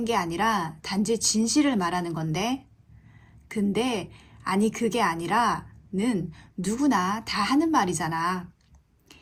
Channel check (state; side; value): identical; both; correlation 1.00